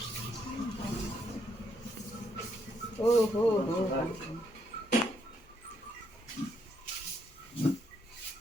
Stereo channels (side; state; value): both; normal; correlation 0.75